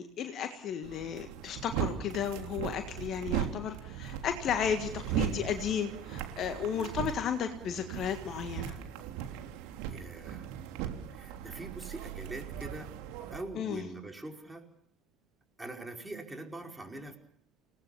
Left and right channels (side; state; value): both; normal; correlation 0.40